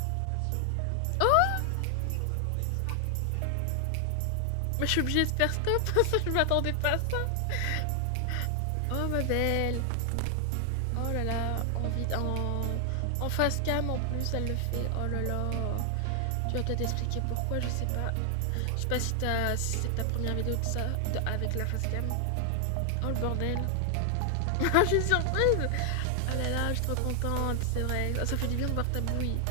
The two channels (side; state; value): both; different; correlation 0.00